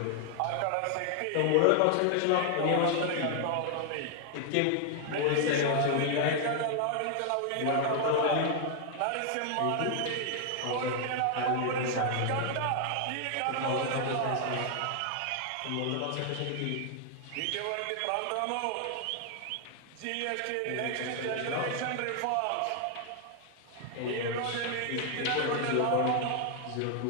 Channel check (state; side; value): different; both; correlation 0.00